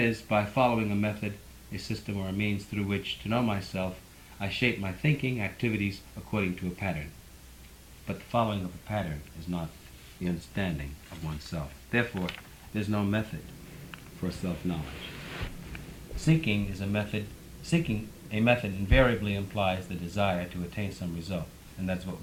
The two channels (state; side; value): identical; both; correlation 1.00